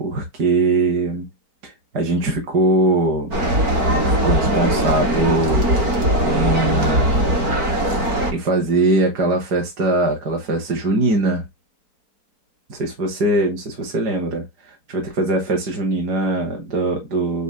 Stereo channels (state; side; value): late; left; 4.5 ms